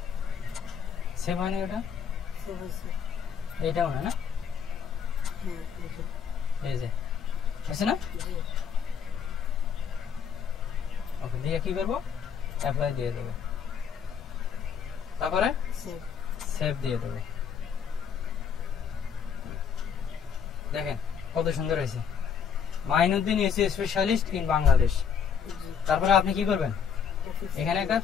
সেভ হয়নি ওটা, সেভ হয়েছে এইটাও না, না হ্যাঁ এই যে এই যে আছে না, জি ওকে দিয়ে কি করবো, অ্যাপ্লাই দিয়ে দেবো, তারপরে সেভ সেভ দিয়ে দেবো। দেখেন কত সুন্দর হয়েছে, Mainuddin AC specialist in Bangladesh. জি তারপরে আপনি কি করবেন, অফিস এখানে একটা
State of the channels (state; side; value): quieter; right; 7.1 dB